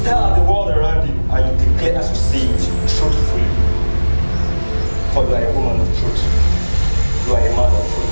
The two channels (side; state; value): both; inverted; correlation -1.00